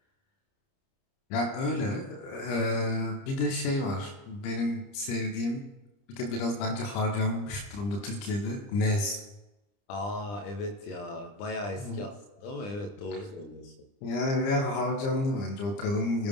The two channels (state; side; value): late; right; 30 ms